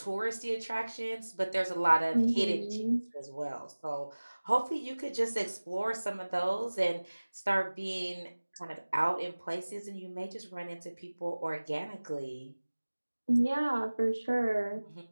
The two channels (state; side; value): inverted; both; correlation -1.00